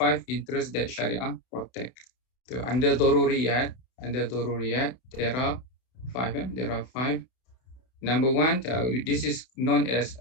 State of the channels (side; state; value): right; late; 31 ms